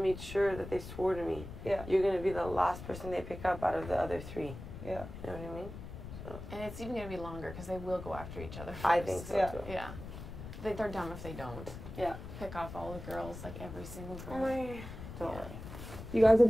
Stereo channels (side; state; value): left; noise; rumble, 11 dB below the sound